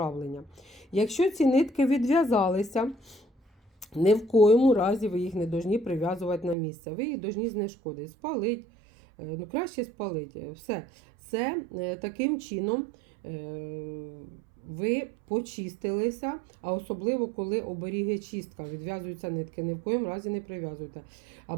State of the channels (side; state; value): left; drops out; at 6.6 s